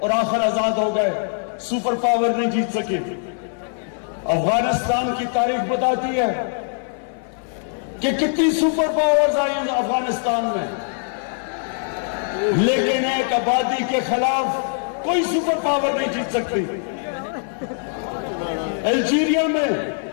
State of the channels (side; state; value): right; silent; 64 dB below the other